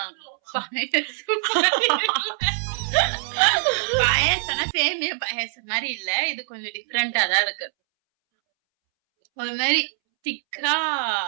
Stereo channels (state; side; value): silent; left; 63 dB below the other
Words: பாயாசம்னா சேமியா பாயாசம் மாதிரி இல்ல, இது கொஞ்சம் டிஃபரெண்டா தான் இருக்கு. ஒரு மாதிரி திக்கா